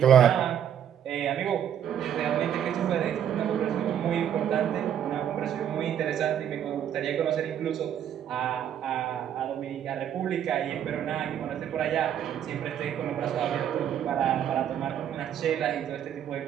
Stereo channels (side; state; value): left; quieter; 9.6 dB